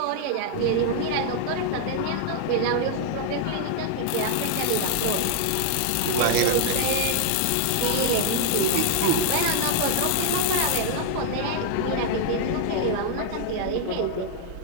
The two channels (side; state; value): both; different; correlation 0.00